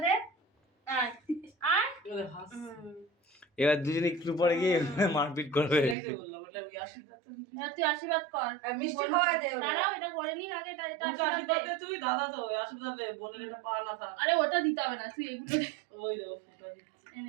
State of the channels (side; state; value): left; drops out; at 6.0 s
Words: দে আয় আয় এবার দুজনে একটু পরে গিয়ে মারপিট করবে। তুই আশীর্বাদ কর মিষ্টি খাওয়াই দে দাঁড়াও এটা করে নি আগে এটা আশীর্বাদ দে তুই দাদা তো আশীর্বাদ দে বোনের এটা পা না থাক। আরে ওটা দিতে হবে না তুই এগুলো দে ওই দে ফুটা দিচ্ছি